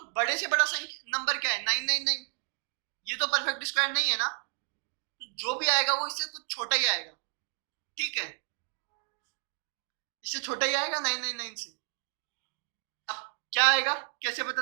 बड़े से बड़ा नंबर क्या है? 999। ये तो परफेक्ट स्क्वायर नहीं है ना, तो जो भी आएगा वो इससे कुछ छोटा ही आएगा, ठीक है, इससे छोटा ही आएगा 999 से। अब क्या आएगा, कैसे पता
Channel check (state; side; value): silent; left; 57 dB below the other